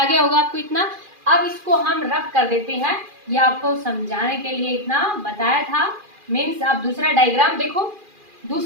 गया होगा आपको इतना। अब इसको हम रफ कर देते हैं, ये आपको समझाने के लिए इतना बताया था। मीन्स आप दूसरा डायग्राम देखो,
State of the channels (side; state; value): left; late; 2.4 ms